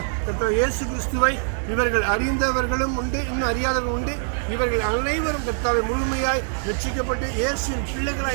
கர்த்தாவே, இயேசு கிறிஸ்துவை இவர்கள் அறிந்தவர்களும் உண்டு, இன்னும் அறியாதவர்களும் உண்டு. இவர்கள் அனைவரும் கர்த்தாவை முழுமையாய் ரட்சிக்கப்பட்டு இயேசுவின்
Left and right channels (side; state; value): left; silent; 63 dB below the other